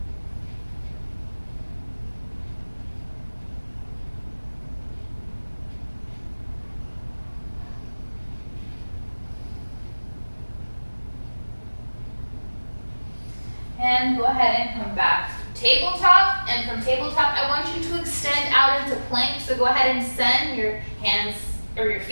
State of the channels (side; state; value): both; inverted; correlation -1.00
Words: And go ahead and come back. Tabletop, and from tabletop, I want you to extend out into plank. So go ahead and send your hands or your